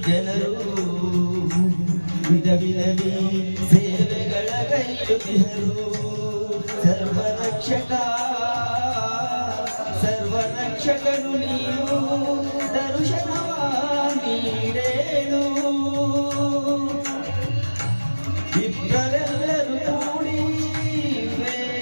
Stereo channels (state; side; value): inverted; both; correlation -1.00